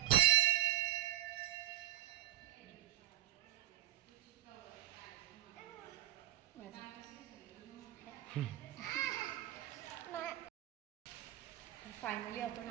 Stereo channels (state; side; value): quieter; left; 13.7 dB